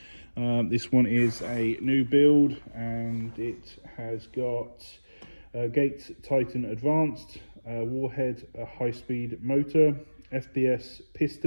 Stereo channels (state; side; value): inverted; both; correlation -1.00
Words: This one is a new build and it has got Gates Titan Advanced, Warhead high-speed motor, FPS